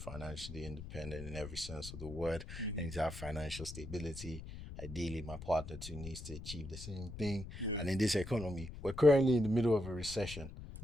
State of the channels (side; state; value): left; noise; rumble, 11 dB below the sound